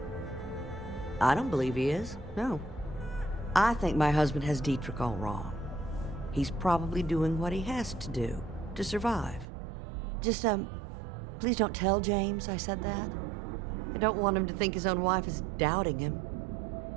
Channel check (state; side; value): drops out; left; at 9.5 s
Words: I don't believe he is, no. I think my husband has Dietrich all wrong. He's probably doing what he has to do to survive. Just, please don't tell James I said that. I don't want him to think his own wife is doubting him.